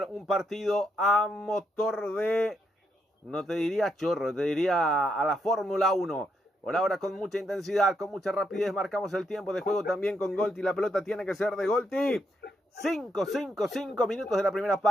un partido a motor de, no te diría chorro, te diría a la Fórmula 1. Por ahora con mucha intensidad, con mucha rapidez, marcamos el tiempo de juego también con Golti. La pelota tiene que ser de Golti. 5 minutos de la primera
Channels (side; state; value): both; normal; correlation 0.78